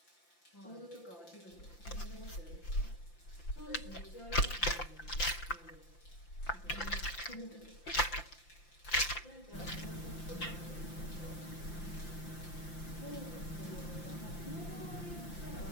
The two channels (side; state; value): right; late; 5.8 ms